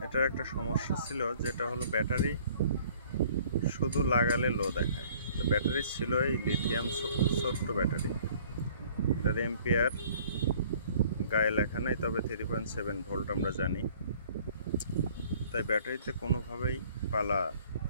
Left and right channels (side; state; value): both; inverted; correlation -0.55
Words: এটার একটা সমস্যা ছিল, যেটা হলো ব্যাটারি শুধু লাগালে লো দেখায়। তো ব্যাটারি ছিল এই লিথিয়াম ছোট্ট ব্যাটারি, এটার এম্পিয়ার গায়ে লেখা নেই, তবে 3.7 ভোল্ট আমরা জানি। তাই ব্যাটারিতে কোনোভাবেই পালা